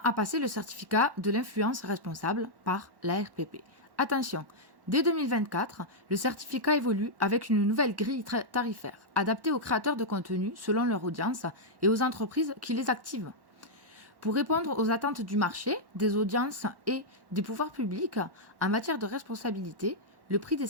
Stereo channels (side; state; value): left; late; 1.1 ms